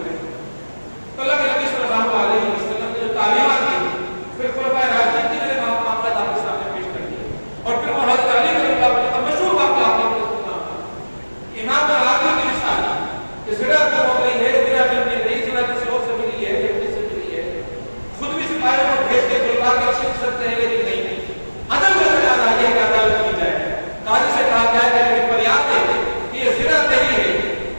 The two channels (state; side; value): inverted; both; correlation -1.00